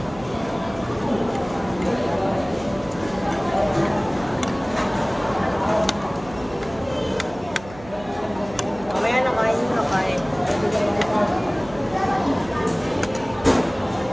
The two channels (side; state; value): right; noise; hum, 18 dB below the sound